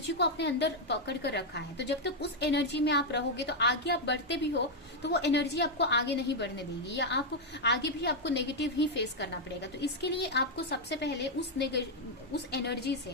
को अपने अंदर पकड़ कर रखा है। तो जब तक उस एनर्जी में आप रहोगे तो आगे आप बढ़ते भी हो तो वो एनर्जी आपको आगे नहीं बढ़ने देगी, या आप आगे भी आपको नेगेटिव ही फेस करना पड़ेगा। तो इसके लिए आपको सबसे पहले उस एनर्जी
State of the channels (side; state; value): both; normal; correlation 0.00